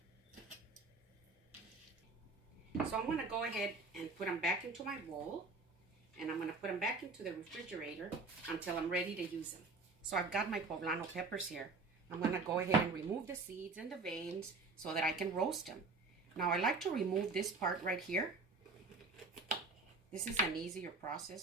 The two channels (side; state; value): left; quieter; 3.8 dB